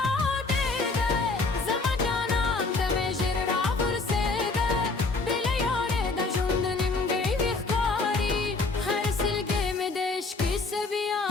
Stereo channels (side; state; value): right; quieter; 3.7 dB